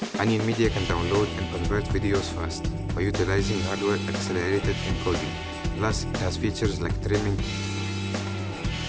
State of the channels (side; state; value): both; identical; correlation 1.00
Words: OnionMedia can download and convert videos fast by utilizing hardware-accelerated encoding. Plus, it has features like trimming,